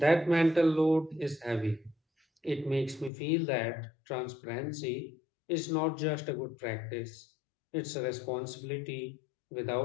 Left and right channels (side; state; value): right; drops out; at 3.1 s